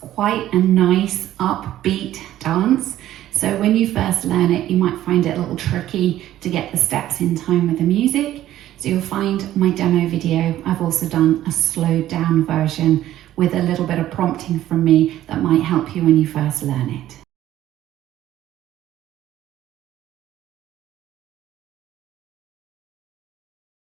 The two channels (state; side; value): quieter; left; 13.2 dB